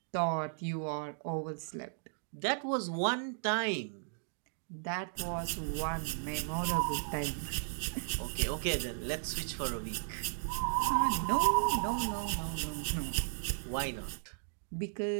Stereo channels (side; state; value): left; silent; digital silence